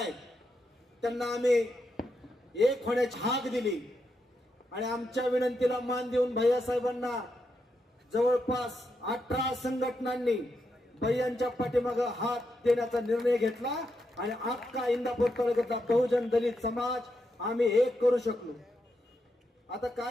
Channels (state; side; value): normal; both; correlation 0.83